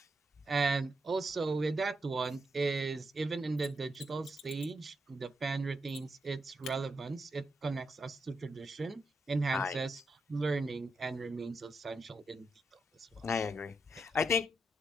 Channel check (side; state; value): both; normal; correlation 0.83